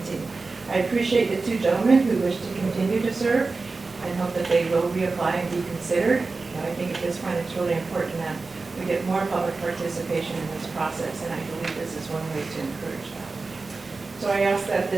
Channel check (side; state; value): left; quieter; 3.9 dB